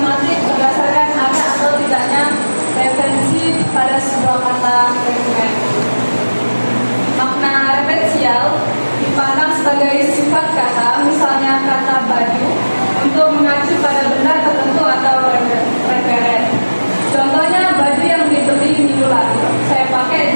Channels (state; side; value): inverted; both; correlation -1.00